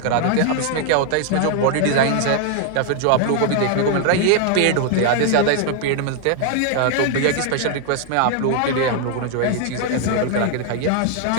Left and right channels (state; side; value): different; both; correlation 0.00